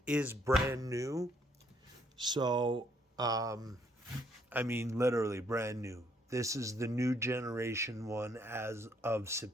is brand new, so I mean literally brand new. This is the new generation one as of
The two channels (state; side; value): normal; both; correlation 0.69